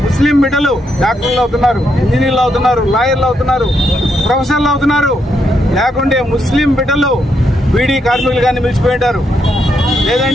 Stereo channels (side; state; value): both; normal; correlation 0.78